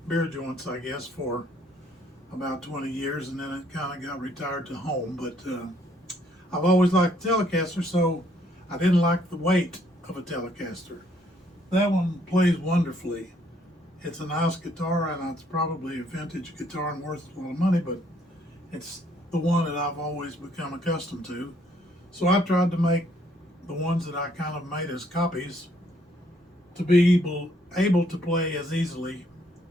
beer joints, I guess, for about 20 years, and then it kind of got retired to home. But I've always liked the Telecaster, so I didn't like the weight of a Telecaster. That one plays wonderfully. It's a nice guitar, and it's probably a vintage guitar and worth a lot of money, but it's the one that I've always become accustomed to. So I tried to make the ones that I kind of made as copies to be able to play as easily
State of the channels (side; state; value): both; normal; correlation 0.67